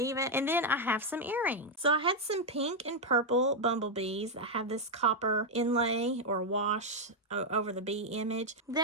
it. And then I have some earrings. So I had some pink and purple bumblebees that have this copper inlay or wash over the bee image.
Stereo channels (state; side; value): normal; both; correlation 0.00